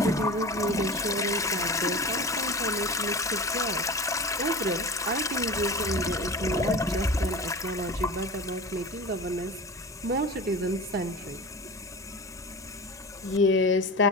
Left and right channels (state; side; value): normal; both; correlation 0.33